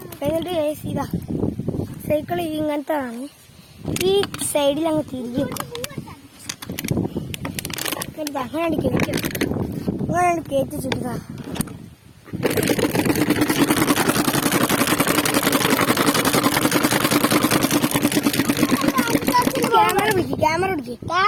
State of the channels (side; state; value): both; identical; correlation 1.00